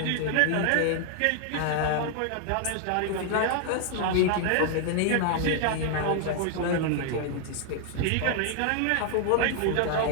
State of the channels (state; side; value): different; both; correlation 0.00